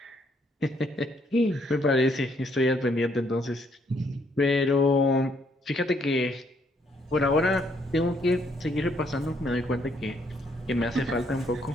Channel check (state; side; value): normal; both; correlation 0.70